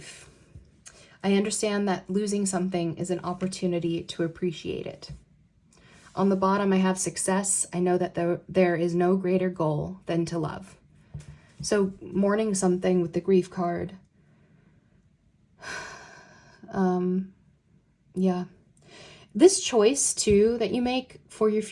I understand that losing something is an opportunity to appreciate it. On the bottom, I have success. I know that there is no greater goal than to love. So mourning something with the grief card. Yeah. This choice too that you make for your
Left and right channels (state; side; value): identical; both; correlation 1.00